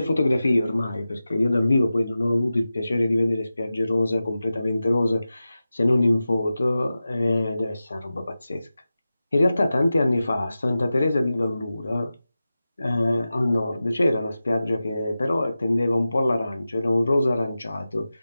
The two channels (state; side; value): inverted; both; correlation -0.94